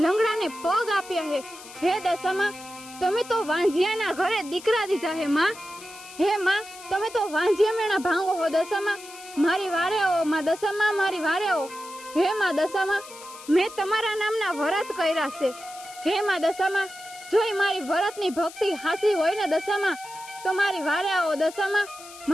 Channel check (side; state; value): left; noise; hiss, 17 dB below the sound